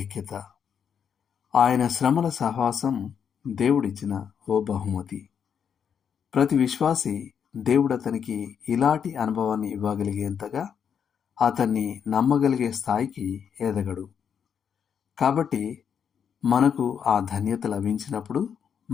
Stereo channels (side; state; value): right; quieter; 7.6 dB